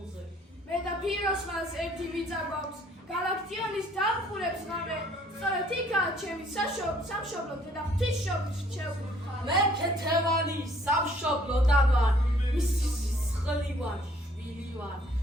მე და ფიროსმანს ერთი მიწა გვაქვს. გალაქტიონის დამხურებს ღამე. სწორედ იქაა ჩემი სამშობლო და ღვთისმშობლის რჩეული მხარე. მე ქეთევანი სამშობლოდან ვარ. მისი სისხლი ვარ, შვილი ვარ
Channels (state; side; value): normal; both; correlation 0.60